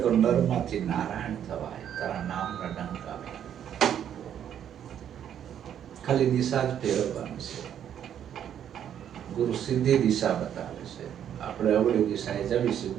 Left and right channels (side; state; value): left; quieter; 9.6 dB